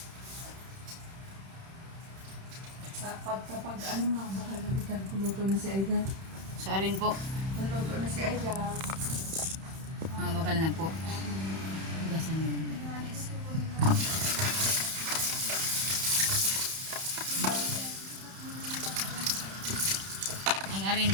Kapag ano nga, baka nabitan kuluto na si Aida. Sa rin po. Naluto na si Aida. Bakal na po. Hugasan mo lang. Ang arin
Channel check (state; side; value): late; left; 31 ms